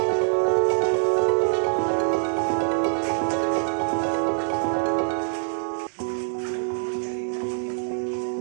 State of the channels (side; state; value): left; silent; 62 dB below the other